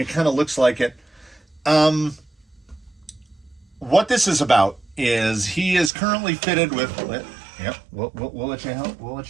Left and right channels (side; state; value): left; drops out; at 5.9 s